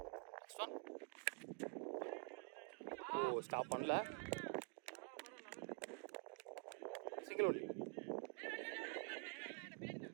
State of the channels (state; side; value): quieter; left; 37.0 dB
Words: நெக்ஸ்ட் ஒன் ஸ்டாப் பண்ணல. Single only.